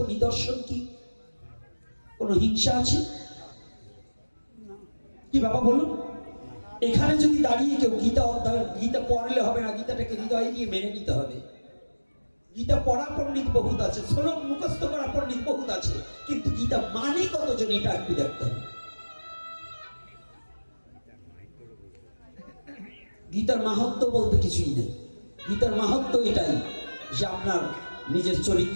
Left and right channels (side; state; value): both; inverted; correlation -1.00